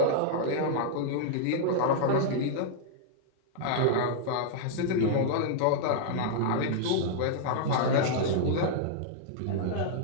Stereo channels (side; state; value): both; different; correlation -0.01